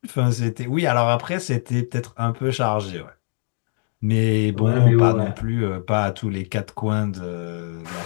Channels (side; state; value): right; silent; 57 dB below the other